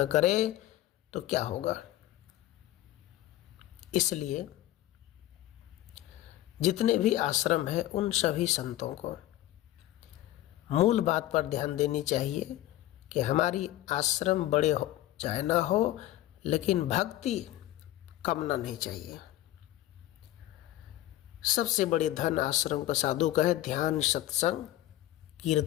करे तो क्या होगा? इसलिए जितने भी आश्रम हैं उन सभी संतों को मूल बात पर ध्यान देनी चाहिए कि हमारी आश्रम बड़े हो चाहे ना हो, लेकिन भक्ति कम ना नहीं चाहिए। सबसे बड़े धन आश्रम का साधु का है ध्यान, सत्संग,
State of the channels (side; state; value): right; quieter; 14.7 dB